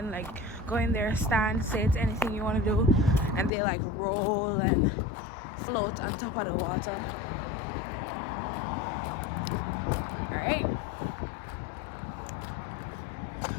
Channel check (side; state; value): right; drops out; at 3.5 s